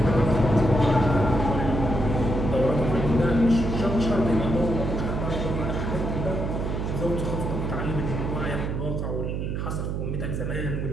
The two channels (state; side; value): noise; right; hum, 2 dB below the sound